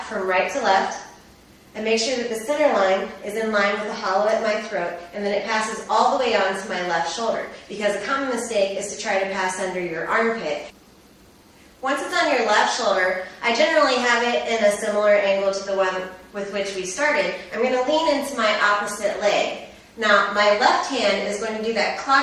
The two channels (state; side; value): identical; both; correlation 1.00